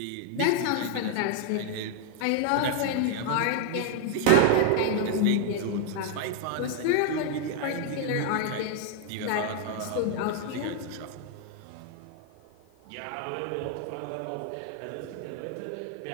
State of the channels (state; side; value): different; both; correlation 0.00